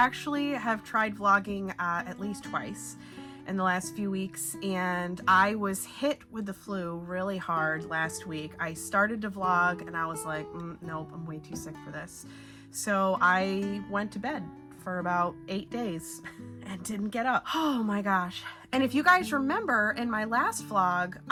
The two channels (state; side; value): identical; both; correlation 1.00